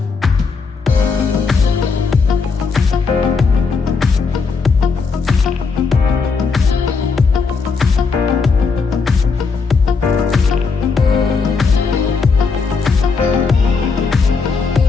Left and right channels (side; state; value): right; quieter; 4.8 dB